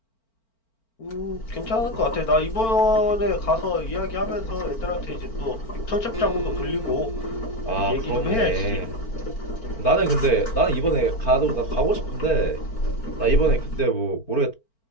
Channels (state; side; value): late; right; 4.4 ms